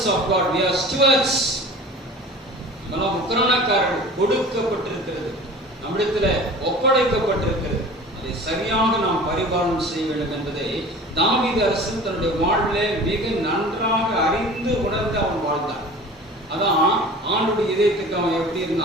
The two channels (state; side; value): normal; both; correlation 0.40